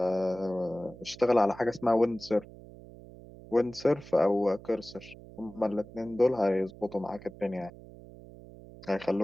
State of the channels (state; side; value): noise; right; hum, 18 dB below the sound